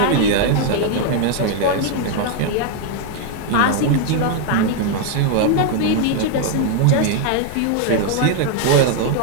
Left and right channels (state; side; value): different; both; correlation 0.00